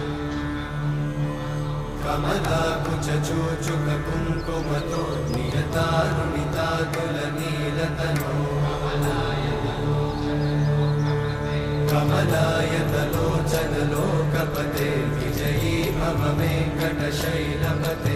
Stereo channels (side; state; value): both; identical; correlation 1.00